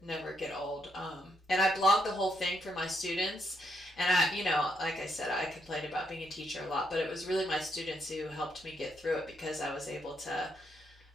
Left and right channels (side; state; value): both; normal; correlation 0.77